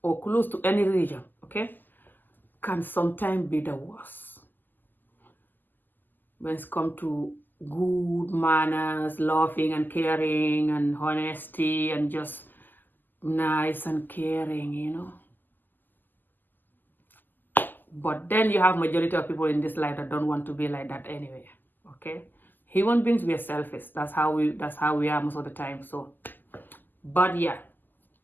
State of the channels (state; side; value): late; right; 0.088 ms